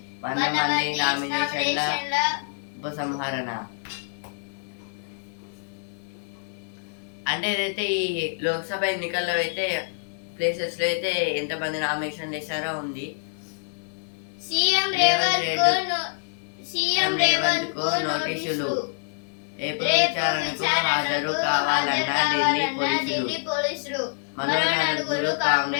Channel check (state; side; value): silent; right; 61 dB below the other